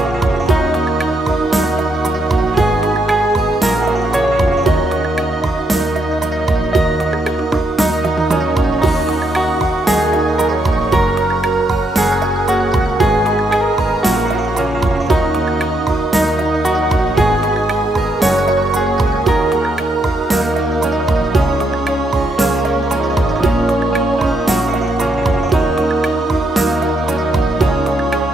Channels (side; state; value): both; normal; correlation 0.77